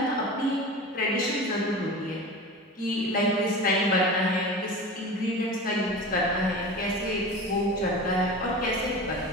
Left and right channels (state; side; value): normal; both; correlation 0.32